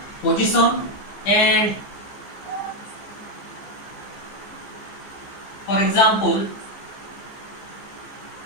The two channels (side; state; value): right; late; 15 ms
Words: position and For example,